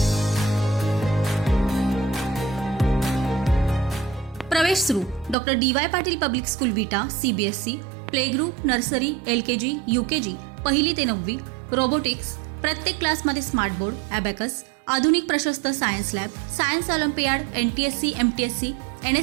प्रवेश सुरू. Doctor DY Patil public school विटा, CBSE, play group, nursery, LKG, UKG, पहिली ते 9वी, रोबोटिक्स, प्रत्येक क्लासमध्ये स्मार्ट बोर्ड, ॲबॅकस, आधुनिक प्रशस्त science lab, science Olympiad, NTSC, MTSC,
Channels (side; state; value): left; drops out; at 5.4 s